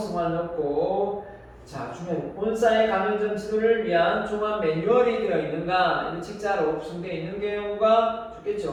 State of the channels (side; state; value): both; identical; correlation 1.00